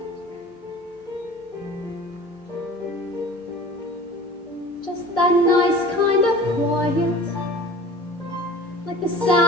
Just that nice kind of quiet, like the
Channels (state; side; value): normal; both; correlation 0.41